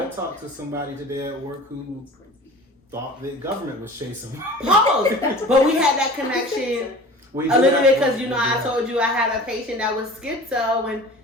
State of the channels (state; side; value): normal; both; correlation 0.41